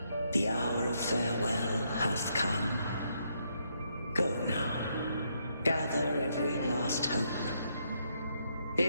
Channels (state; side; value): inverted; both; correlation -0.76